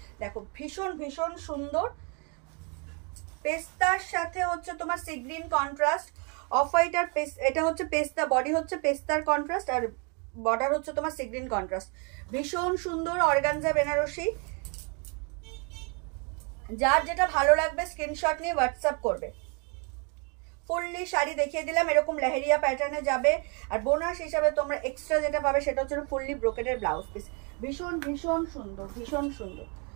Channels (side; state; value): left; quieter; 34.7 dB